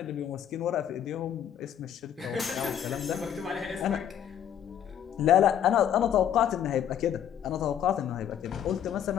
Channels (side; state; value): right; quieter; 9.6 dB